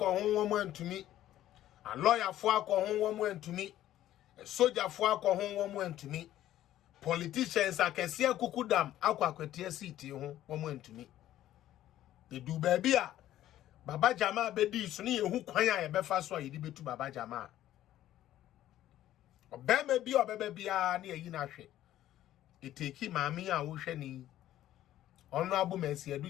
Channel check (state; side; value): quieter; right; 13.1 dB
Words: woman to me, a lawyer for alcohol woman to me, a soldier for alcohol woman to me, politicians I can see a kukudam aqua kwetia city woman to me. They do baby Baba Jama bedi so ne ehu kwan a ye befa so a yedi betu Baba Jama. Obema bi obeba bia na yi na hwe. Eteki maami a wo hwe ni. Honorable Mercy